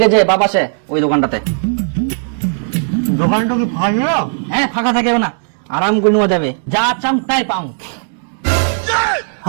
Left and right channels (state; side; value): silent; left; digital silence